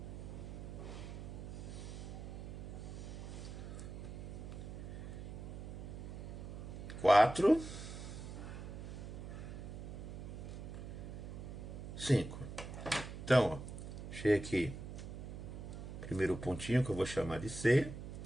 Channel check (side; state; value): right; noise; hum, 8 dB below the sound